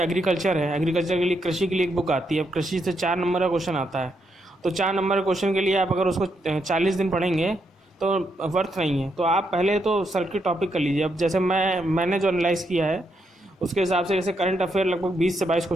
है, एग्रीकल्चर के लिए कृषि के लिए एक बुक आती है। अब कृषि से 4 नंबर का क्वेश्चन आता है, तो 4 नंबर के क्वेश्चन के लिए आप अगर उसको 40 दिन पढ़ेंगे तो वर्थ नहीं है। तो आप पहले तो सर्किट टॉपिक कर लीजिए। अब जैसे मैंने जो एनालाइज़ किया है उसके हिसाब से जैसे करंट अफेयर लगभग 20 से 22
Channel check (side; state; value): both; normal; correlation 0.79